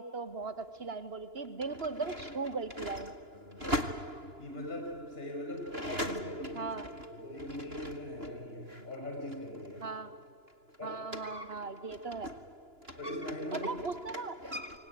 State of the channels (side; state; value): left; late; 2.9 ms